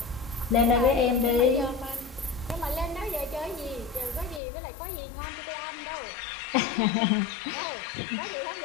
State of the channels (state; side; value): drops out; right; at 4.4 s